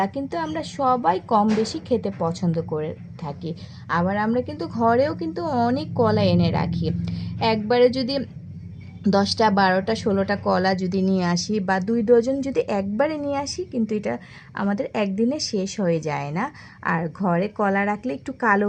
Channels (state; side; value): identical; both; correlation 1.00